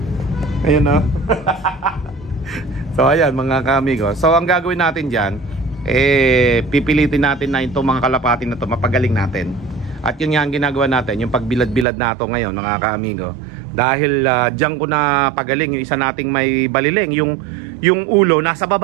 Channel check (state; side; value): drops out; left; at 11.9 s